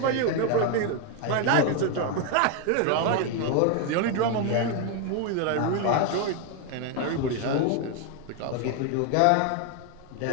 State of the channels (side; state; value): both; different; correlation 0.01